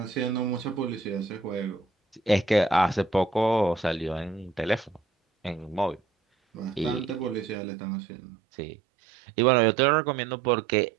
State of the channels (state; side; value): drops out; left; at 7.6 s